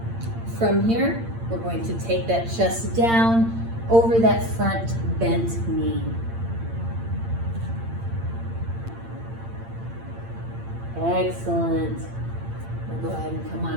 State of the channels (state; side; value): late; left; 8.8 ms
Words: From here, we're going to take that chest down over that front bent knee. Excellent. We'll go ahead and come